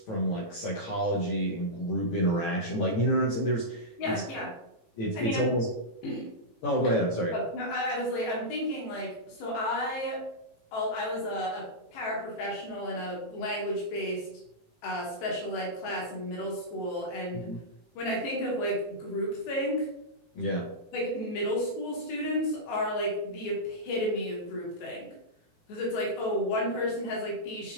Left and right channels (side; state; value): right; late; 18 ms